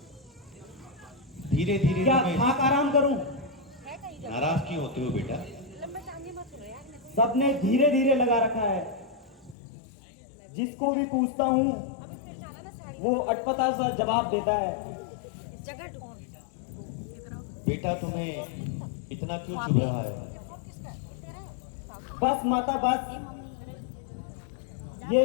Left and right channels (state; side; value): drops out; right; at 9.6 s